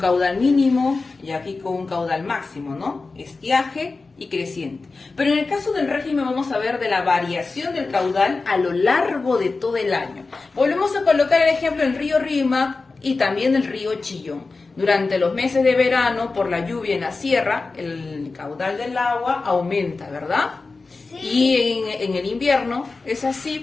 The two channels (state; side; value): quieter; right; 3.9 dB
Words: mínimo y aquí con un caudal máximo, ¿no? Estiaje y creciente. Pero en el caso del régimen vamos a ver de la variación del caudal a lo largo de todo el año. Volvemos a colocar el ejemplo del río Rímac y también del río Chillón. Durante los meses de verano, por la lluvia en la sierra, el caudal del agua aumenta, ¿verdad? Sí. Y en el invierno es